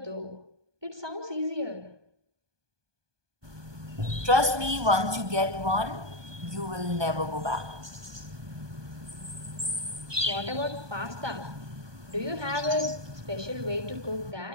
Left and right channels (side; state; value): left; late; 1.2 ms